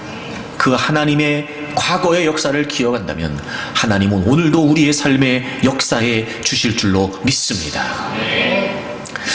그 하나님의 과거의 역사를 기억한다면 하나님은 오늘도 우리의 삶의 역사에 주실 줄로 믿습니다.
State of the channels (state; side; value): identical; both; correlation 1.00